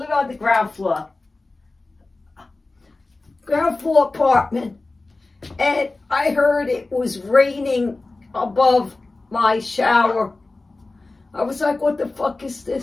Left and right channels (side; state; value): right; quieter; 3.3 dB